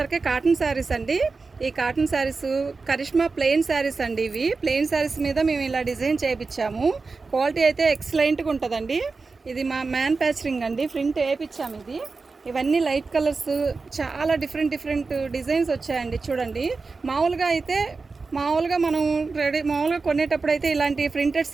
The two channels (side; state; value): left; quieter; 4.2 dB